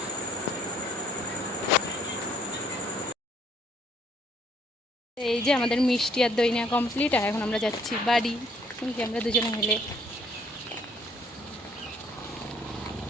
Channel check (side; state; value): both; normal; correlation 0.64